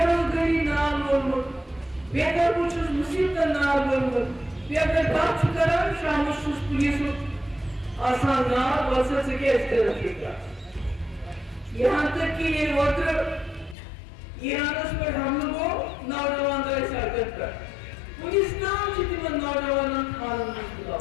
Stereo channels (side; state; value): right; drops out; at 13.8 s